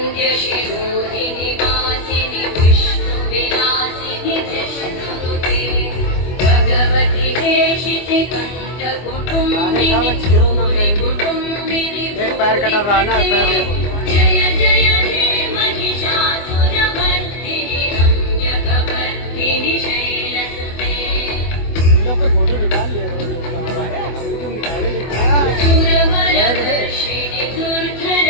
वासिनि विष्णुविलासिनि कृष्णनुते भगवति देशिति कण्ठकुटुम्बिनि कुटुम्बिनि एक पैर कटर रहा ना, पैर देखो। जय जय हे महिषासुरमर्दिनि रम्यकवर्धिनि शैलसुते लोग के फोटो निकाल लिया करो। सुरवरवर्षिणि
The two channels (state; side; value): late; right; 24 ms